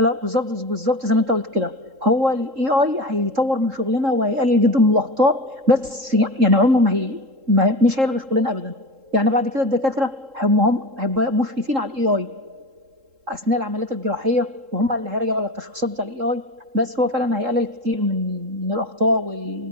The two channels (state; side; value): late; left; 3.7 ms